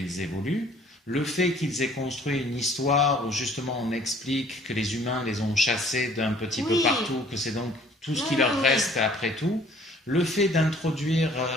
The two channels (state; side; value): normal; both; correlation 0.56